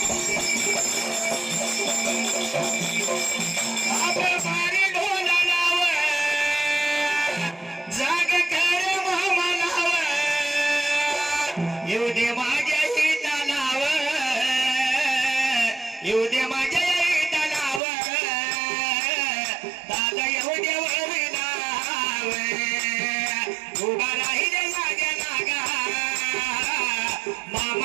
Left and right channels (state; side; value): drops out; left; at 17.8 s